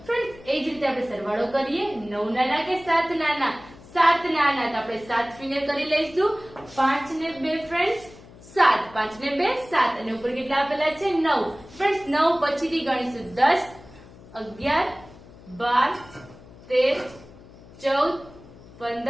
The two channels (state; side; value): noise; left; hum, 21 dB below the sound